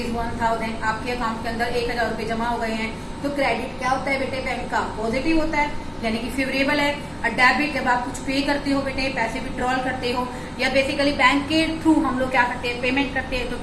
आपके अकाउंट के अंदर 1000 रुपए जमा हो गए हैं। तो क्रेडिट क्या होता है बेटे, बैंक का पॉजिटिव होता है, यानी कि फेवरेबल है। और डेबिट जब आप कुछ पे करते हो बेटे, पैसे विड्रॉल करते हो या बेसिकली बैंक के थ्रू हम लोग क्या करते हैं, पेमेंट करते हैं, तो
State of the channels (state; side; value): identical; both; correlation 1.00